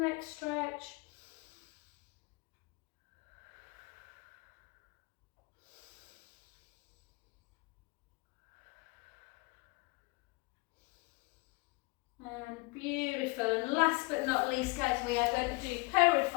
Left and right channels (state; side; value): quieter; right; 25.8 dB